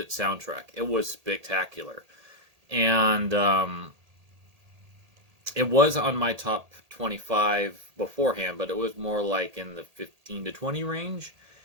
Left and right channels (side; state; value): left; late; 1.8 ms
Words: soundtrack. It was spectacular. And it was on my top 25 beforehand, but it was more like in the 15 to 20 range.